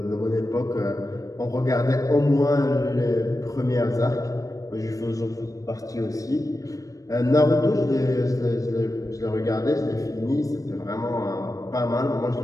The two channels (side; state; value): right; late; 0.16 ms